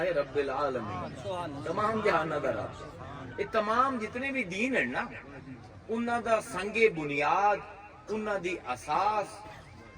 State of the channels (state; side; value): identical; both; correlation 1.00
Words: رب العالمین تمام جہاناں دا رب. یہ تمام جتنے بھی دین ہیں نا انہاں دا سنگ بنیاد انہاں دی اساس